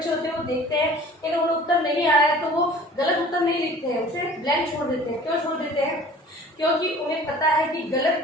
होते हैं वो देखते हैं कि अगर उन्हें उत्तर नहीं आ रहा है तो वो गलत उत्तर नहीं लिखते हैं, उसे ब्लैंक छोड़ देते हैं। क्यों छोड़ देते हैं? क्योंकि उन्हें पता है कि गलत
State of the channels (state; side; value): normal; both; correlation 0.47